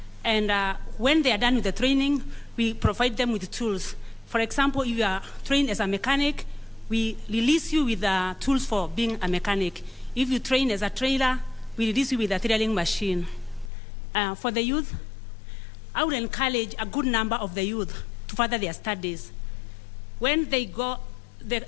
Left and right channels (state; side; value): drops out; right; at 13.7 s